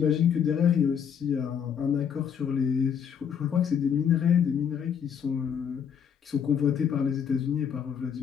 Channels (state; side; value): quieter; right; 7.8 dB